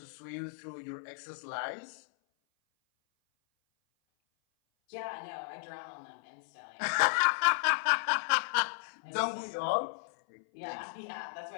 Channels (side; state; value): right; silent; 55 dB below the other